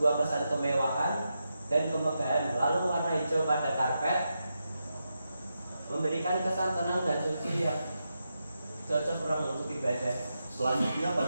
kesan kemewahan dan kemegahan. Lalu warna hijau pada karpet memberikan kesan tenang dan suci yang cocok orang untuk ibadah. Selanjutnya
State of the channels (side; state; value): both; inverted; correlation -0.87